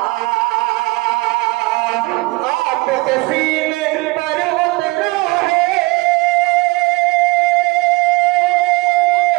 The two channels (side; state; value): left; quieter; 24.1 dB